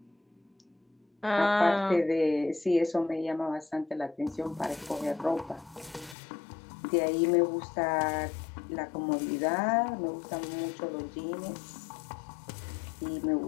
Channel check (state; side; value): drops out; right; at 6.2 s